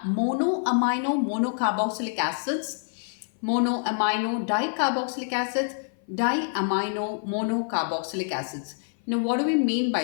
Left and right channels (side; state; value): right; silent; 56 dB below the other